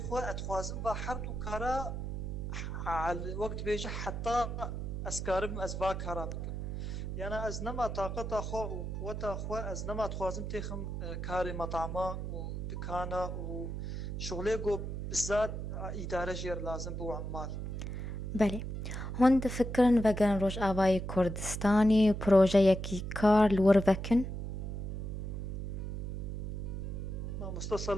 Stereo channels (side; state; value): right; noise; hum, 4 dB below the sound